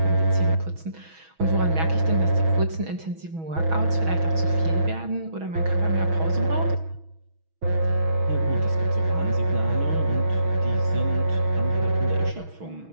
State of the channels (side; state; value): left; late; 6.2 ms